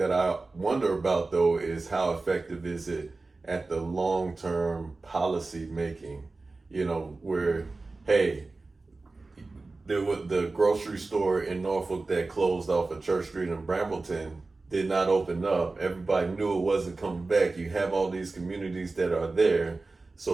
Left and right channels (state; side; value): quieter; left; 3.5 dB